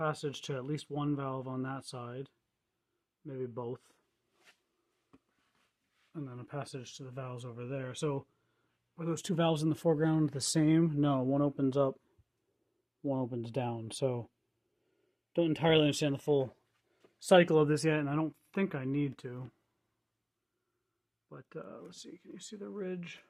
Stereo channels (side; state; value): both; identical; correlation 1.00